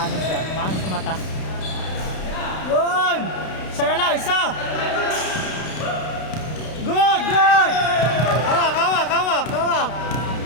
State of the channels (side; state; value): right; late; 32 ms